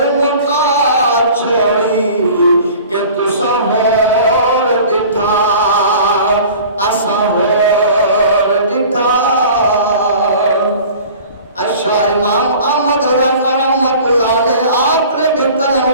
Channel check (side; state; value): both; inverted; correlation -0.44